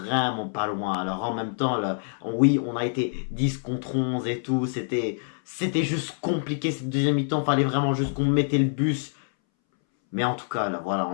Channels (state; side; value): silent; right; 61 dB below the other